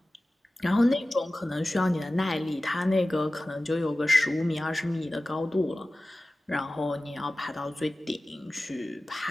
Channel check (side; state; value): both; normal; correlation 0.96